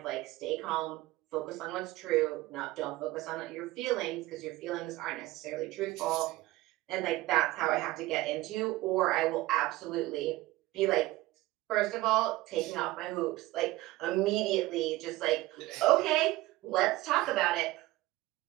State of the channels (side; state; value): left; quieter; 18.3 dB